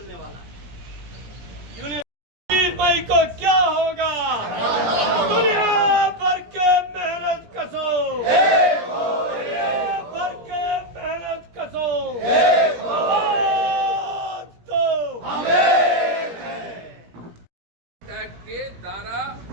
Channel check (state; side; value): late; left; 17 ms